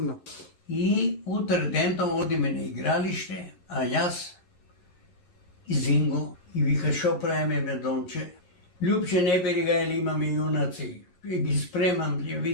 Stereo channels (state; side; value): late; right; 11 ms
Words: И утре дента одиме на игралиште, а јас и Зинго и вика шо правиме Медонче. Љупче не бери га или имаме јунаци. И ги спремам, ја